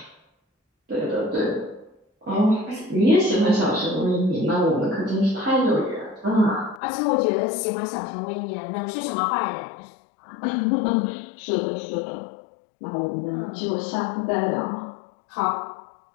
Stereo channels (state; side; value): drops out; right; at 6.8 s